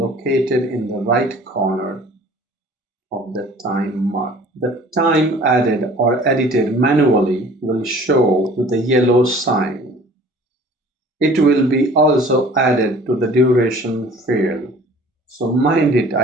in the right corner of the time mark. The time added or edited manually will show with the yellow sign. It will be also added to the duration field. So mind it,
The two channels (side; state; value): both; normal; correlation 0.49